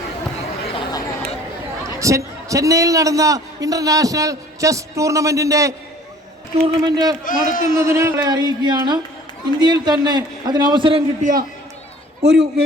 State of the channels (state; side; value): normal; both; correlation 0.50